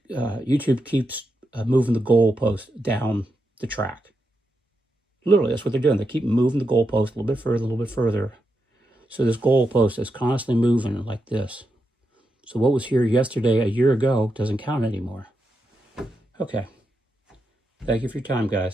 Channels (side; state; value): both; normal; correlation 0.85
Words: YouTube keeps moving the goalpost down the track. Literally, that's what they're doing. They keep moving the goalpost a little bit further, a little bit further. So this goalpost is constantly moving like this. So what was here yesterday, a year ago, doesn't count anymore. Okay. Thank you for your time,